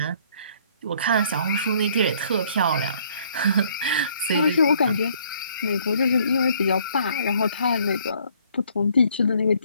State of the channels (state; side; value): inverted; both; correlation -0.63